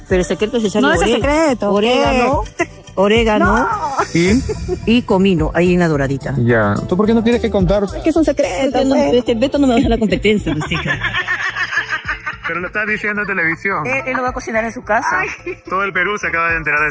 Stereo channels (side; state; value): both; identical; correlation 1.00